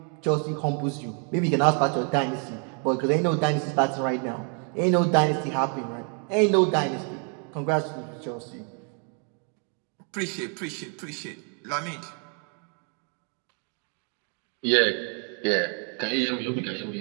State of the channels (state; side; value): quieter; left; 39.9 dB